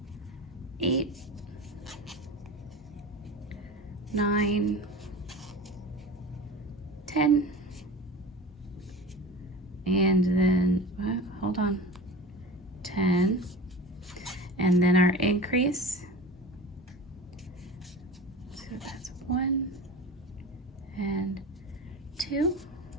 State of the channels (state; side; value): normal; both; correlation 0.33